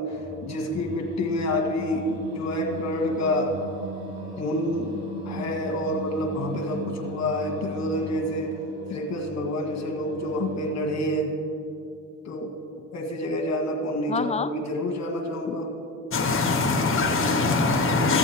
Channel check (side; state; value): both; normal; correlation 0.23